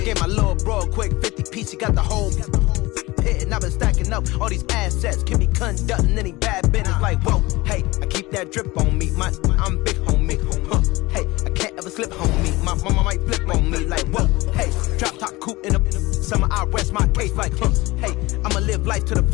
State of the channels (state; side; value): quieter; right; 21.1 dB